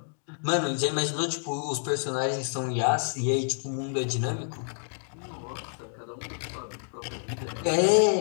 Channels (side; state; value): right; silent; digital silence